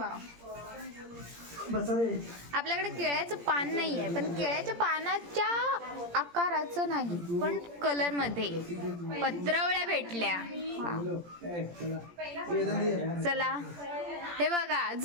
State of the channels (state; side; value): late; left; 17 ms